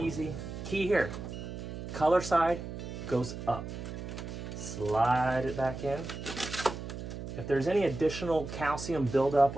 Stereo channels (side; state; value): right; noise; hum, 8 dB below the sound